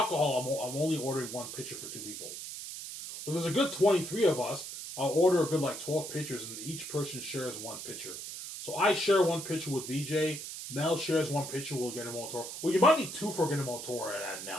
I'm only ordering one pitcher for 2 people. If there's a good 23 of us, I'll order a good like 12 pitchers, and each person shares one pitcher. So I share one pitcher with VJ. Mel shares one pitcher. We'll get him all Toro. Well, you might need 2 for getting him all Toro at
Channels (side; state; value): right; noise; hiss, 8 dB below the sound